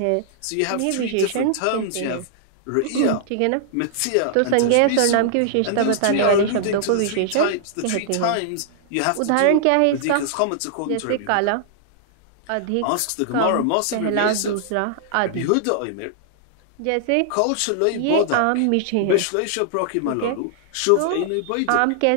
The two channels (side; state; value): both; different; correlation -0.01